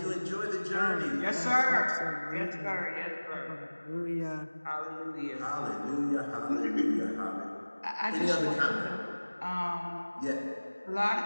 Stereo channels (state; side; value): inverted; both; correlation -1.00